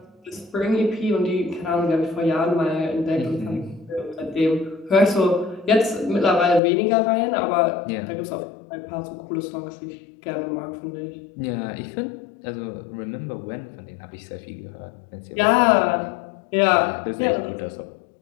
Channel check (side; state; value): right; drops out; at 6.6 s